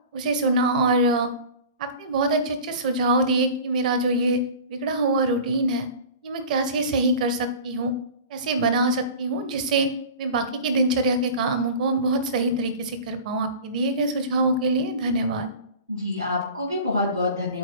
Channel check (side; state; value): both; inverted; correlation -0.38